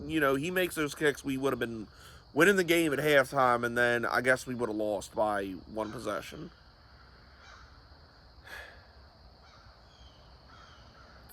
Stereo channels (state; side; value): identical; both; correlation 1.00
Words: he makes those kicks, we would have been winning the game at halftime, and then I guess we would have lost by one possession.